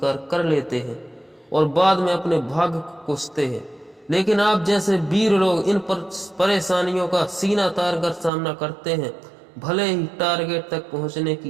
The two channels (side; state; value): left; drops out; at 8.3 s